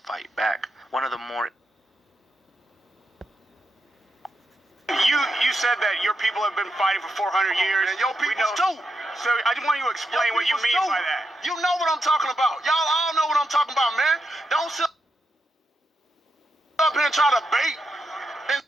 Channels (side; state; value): both; normal; correlation 0.84